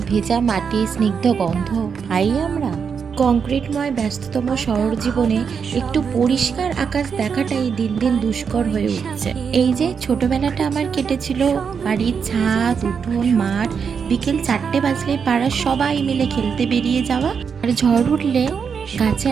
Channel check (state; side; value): quieter; left; 6.4 dB